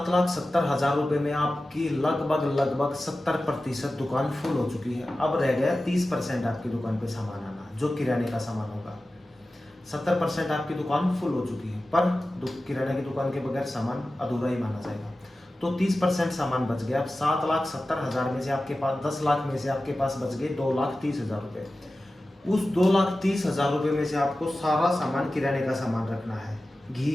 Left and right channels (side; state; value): both; normal; correlation 0.95